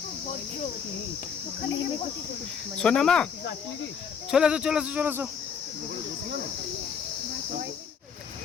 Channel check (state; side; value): quieter; right; 6.8 dB